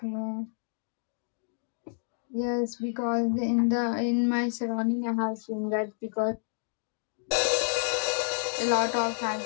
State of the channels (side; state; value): right; silent; digital silence